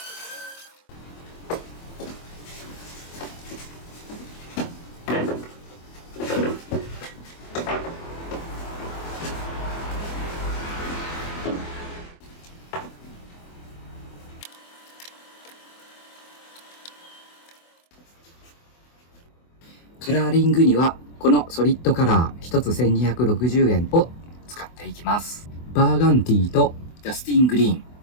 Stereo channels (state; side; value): late; right; 24 ms